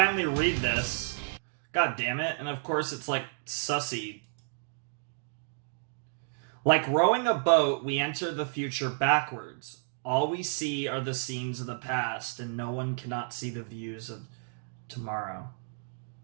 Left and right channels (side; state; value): left; silent; digital silence